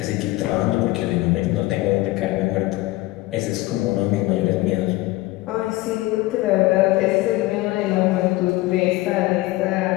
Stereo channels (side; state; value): right; quieter; 19.1 dB